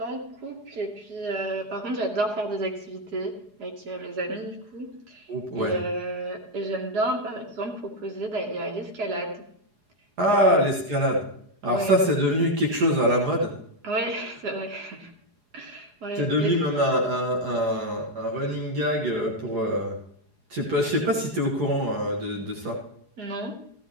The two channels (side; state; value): left; late; 4.8 ms